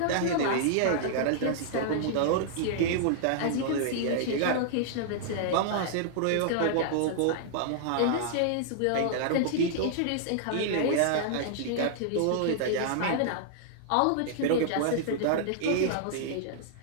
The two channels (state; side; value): different; both; correlation -0.01